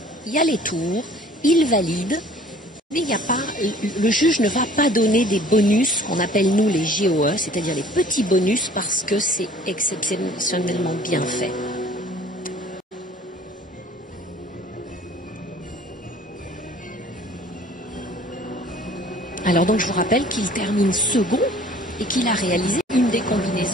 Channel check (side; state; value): both; normal; correlation 0.51